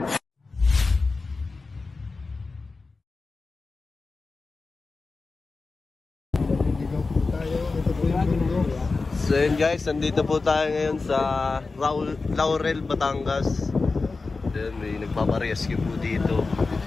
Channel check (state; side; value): quieter; right; 3.9 dB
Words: So yun guys, nandito po tayo ngayon sa Laurel, Batangas. Then may nagpaparescue po dito